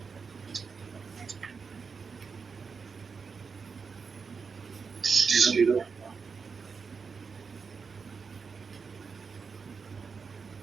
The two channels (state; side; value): quieter; left; 5.4 dB